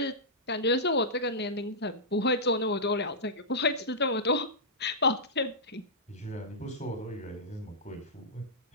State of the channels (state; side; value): normal; both; correlation -0.15